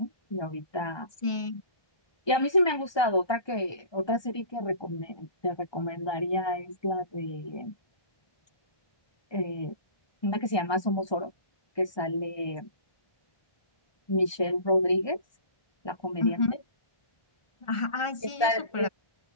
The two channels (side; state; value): right; late; 1.2 ms